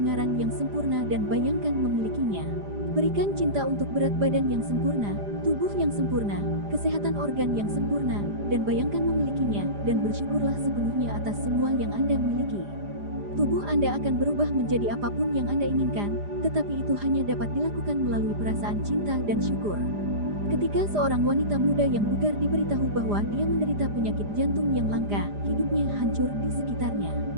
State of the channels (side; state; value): left; late; 4.9 ms